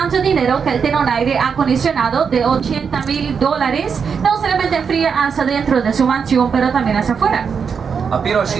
dinero que él tiene un aire acondicionado de $80,000. No solamente fría hacia dentro de su mansión, pero también hacia afuera. A piros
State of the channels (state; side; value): quieter; left; 6.3 dB